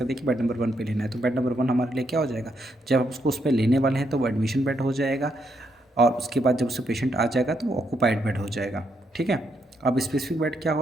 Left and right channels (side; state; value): both; normal; correlation 0.78